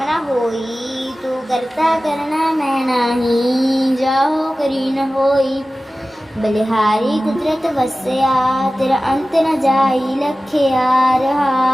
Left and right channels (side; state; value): both; normal; correlation 0.96